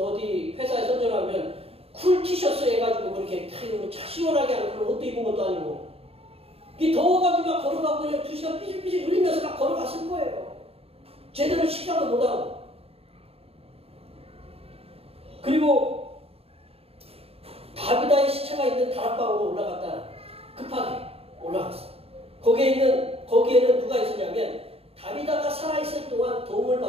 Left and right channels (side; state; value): left; late; 0.28 ms